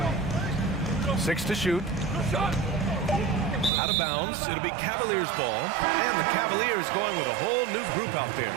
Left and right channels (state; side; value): drops out; left; at 3.7 s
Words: 6 to shoot. Out of bounds. It'll be Cavaliers ball. And the Cavaliers going with a whole new group out there.